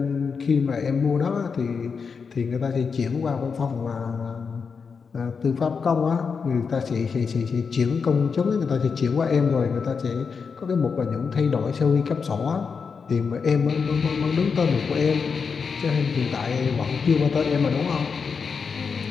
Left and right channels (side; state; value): right; quieter; 5.6 dB